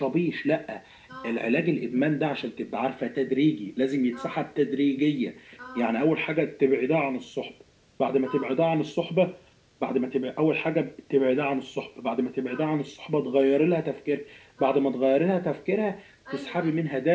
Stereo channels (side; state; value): both; identical; correlation 1.00